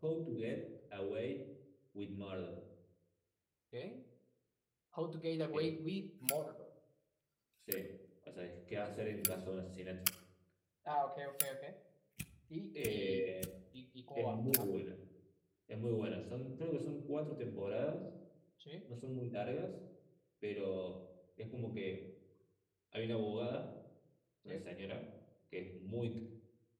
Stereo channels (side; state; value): both; identical; correlation 1.00